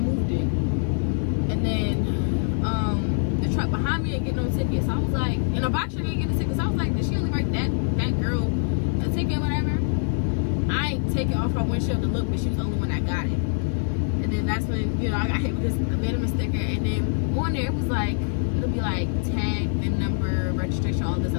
it. And then, the truck behind me didn't get no ticket. So I was like, and a box truck didn't get a ticket. So I was like, did she only write that girl a ticket, whatever? I ain't take it off her windshield to look, but she was the only one that got it. And then that's when, I got hit with this abandonment sticker. And then on there, it was like, it'll be like tag, VIN number, registration, all this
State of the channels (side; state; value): right; silent; 58 dB below the other